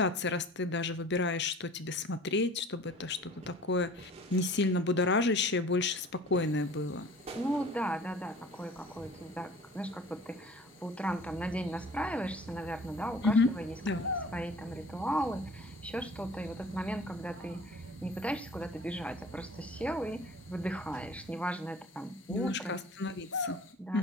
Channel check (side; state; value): both; normal; correlation 0.45